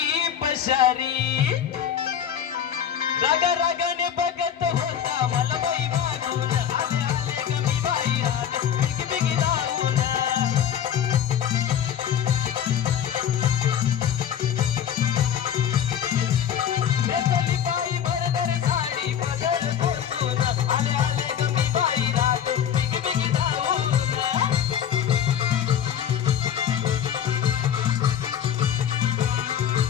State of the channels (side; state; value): right; quieter; 9.2 dB